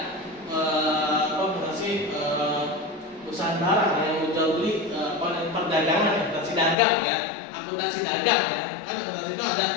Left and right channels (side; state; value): right; drops out; at 6.8 s